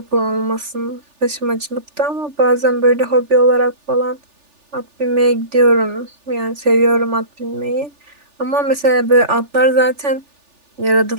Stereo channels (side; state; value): left; late; 3.4 ms